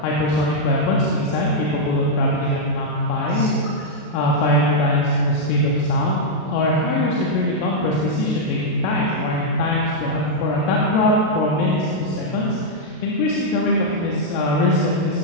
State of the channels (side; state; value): right; late; 33 ms